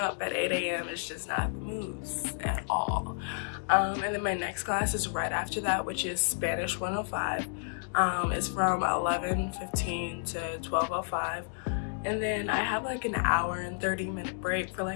at 8 a.m. is just not the moves at all. And then my next class is right after that, which is Spanish 105. It's from 11:15 to 12:05. And then I have like an hour and 30-minute break for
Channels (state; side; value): silent; right; digital silence